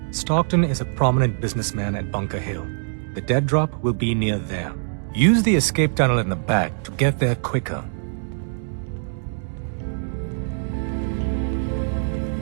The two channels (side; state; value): left; silent; digital silence